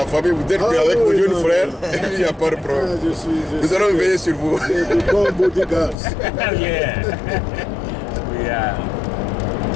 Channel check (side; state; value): right; drops out; at 6.0 s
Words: famille, vous êtes avec vos jeunes frères, il n'y a pas de problème. Nous allons veiller sur vous.